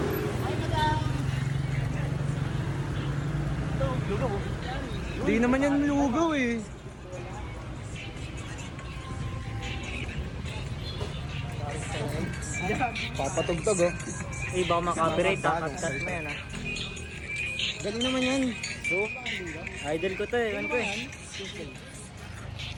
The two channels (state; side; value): identical; both; correlation 1.00